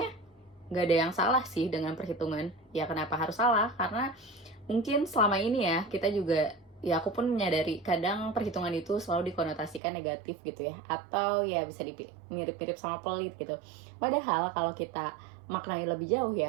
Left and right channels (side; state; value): left; drops out; at 9.8 s